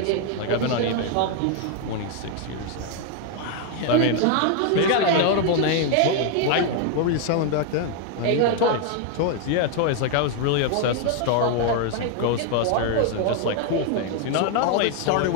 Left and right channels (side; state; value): both; different; correlation 0.01